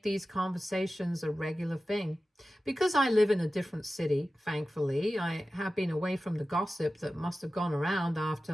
these conversations a regular thing. Because I live in a different city, thankfully, I have been away from the gossip that must have gone around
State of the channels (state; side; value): normal; both; correlation 0.95